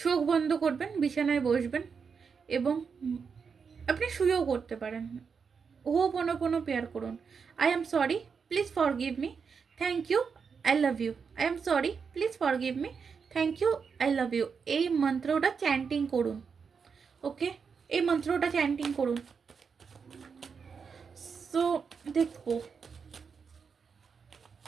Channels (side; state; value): left; quieter; 5.9 dB